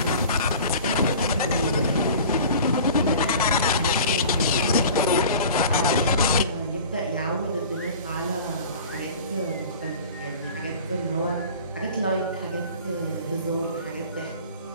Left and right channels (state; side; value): inverted; both; correlation -0.41